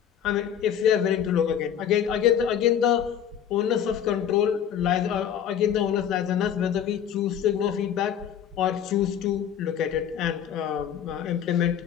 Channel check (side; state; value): right; quieter; 9.2 dB